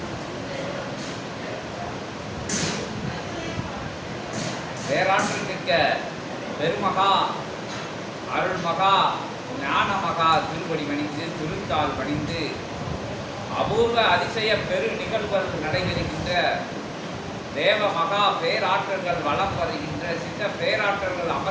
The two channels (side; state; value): both; identical; correlation 1.00